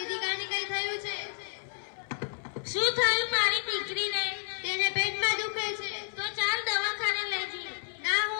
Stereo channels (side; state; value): right; silent; 57 dB below the other